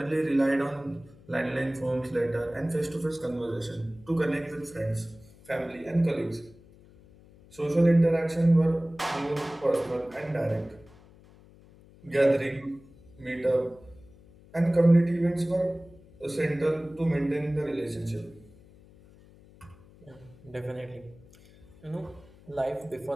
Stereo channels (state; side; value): noise; left; hum, 24 dB below the sound